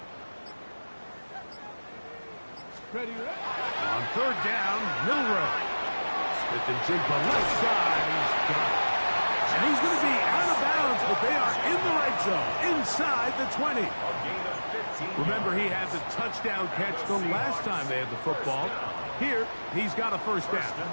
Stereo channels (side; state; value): both; inverted; correlation -1.00